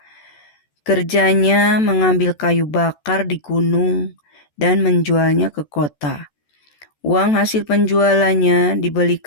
Kerjanya mengambil kayu bakar di gunung dan menjualnya ke kota. Uang hasil penjualannya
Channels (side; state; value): right; late; 14 ms